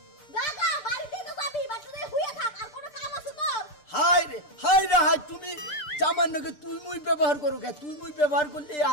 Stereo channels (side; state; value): right; late; 6.7 ms